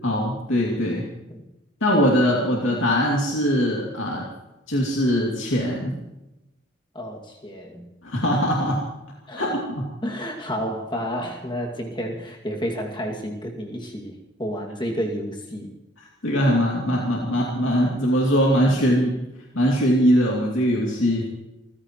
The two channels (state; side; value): normal; both; correlation 0.54